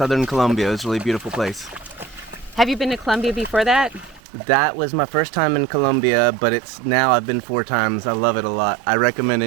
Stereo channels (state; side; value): drops out; left; at 4.2 s